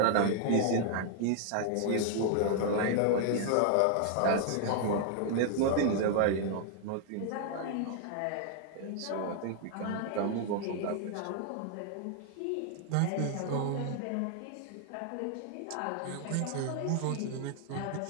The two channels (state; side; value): different; both; correlation 0.00